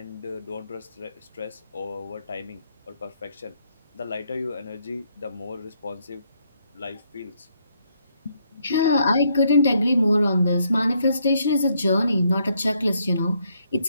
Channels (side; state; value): both; inverted; correlation -0.73